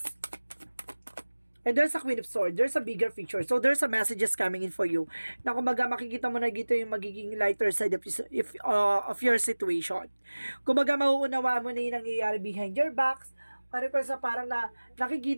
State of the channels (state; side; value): inverted; both; correlation -1.00